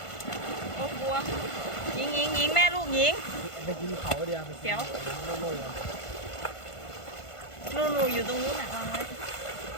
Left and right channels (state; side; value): late; right; 1.5 ms